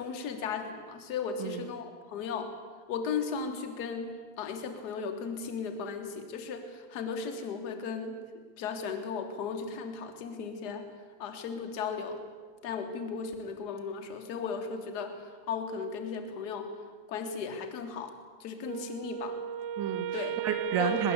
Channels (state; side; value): late; right; 4.9 ms